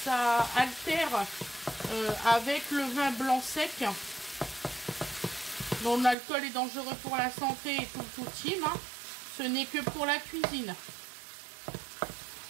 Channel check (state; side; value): drops out; left; at 6.2 s